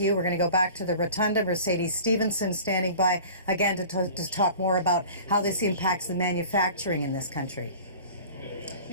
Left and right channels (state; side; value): inverted; both; correlation -0.42